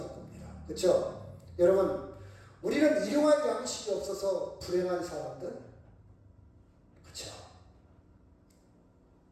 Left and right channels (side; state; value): both; identical; correlation 1.00